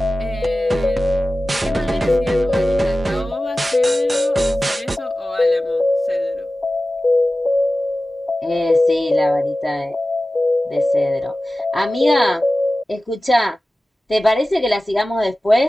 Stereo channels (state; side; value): normal; both; correlation 0.96